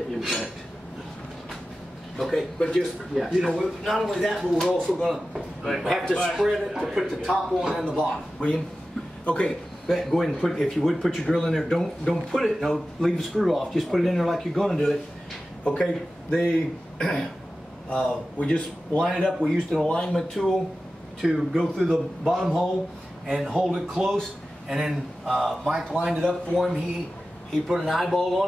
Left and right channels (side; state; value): both; normal; correlation 0.94